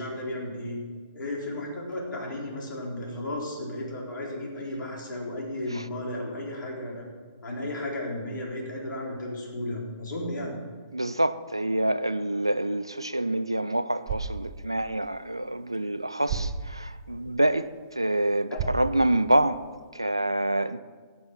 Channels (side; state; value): both; inverted; correlation -0.86